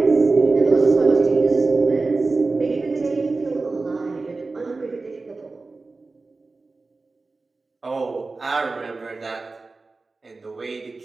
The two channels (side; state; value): left; quieter; 3.7 dB